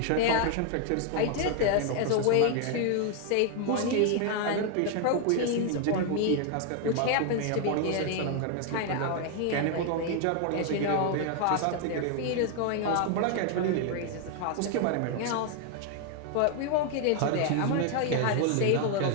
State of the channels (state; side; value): different; both; correlation 0.00